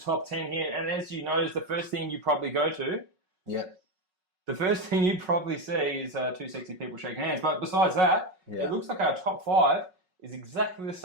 10 here, and as you notice, the first thing you probably go to. Yep. The first thing you probably see is two sexy people shaking hands. But besides that, It looks like our top 5 is exactly the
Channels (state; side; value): late; left; 5.4 ms